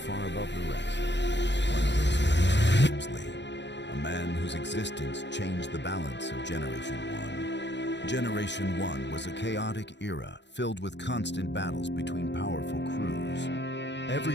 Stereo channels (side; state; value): right; late; 0.51 ms